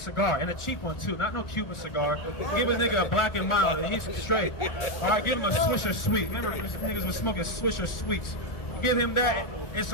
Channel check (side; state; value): right; late; 1.4 ms